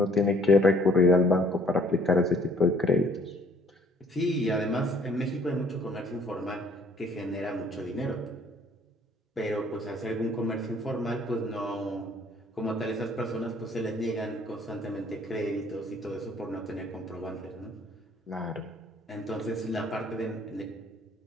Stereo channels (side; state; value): both; normal; correlation 0.60